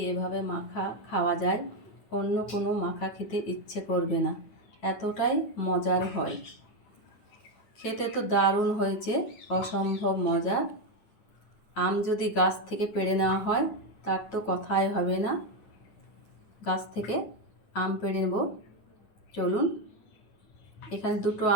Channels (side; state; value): right; late; 9.6 ms